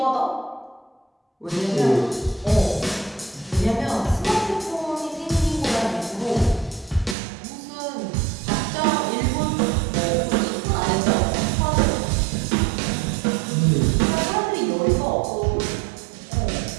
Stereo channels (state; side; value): drops out; left; at 7.2 s